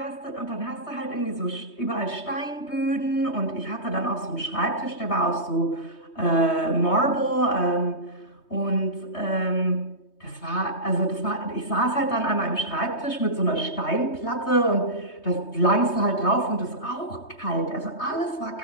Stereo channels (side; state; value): right; late; 3.2 ms